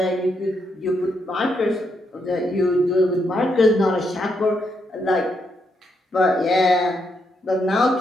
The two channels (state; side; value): normal; both; correlation 0.79